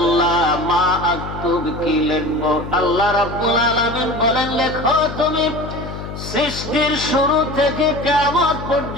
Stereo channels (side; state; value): left; noise; hum, 9 dB below the sound